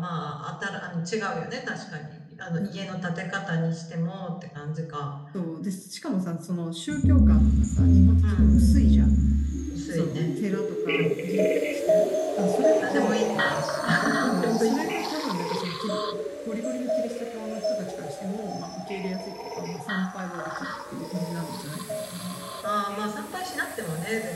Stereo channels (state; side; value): identical; both; correlation 1.00